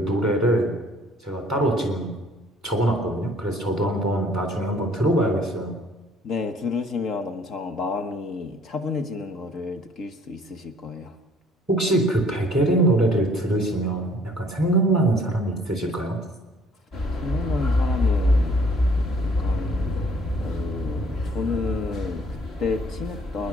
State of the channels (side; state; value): both; normal; correlation 0.58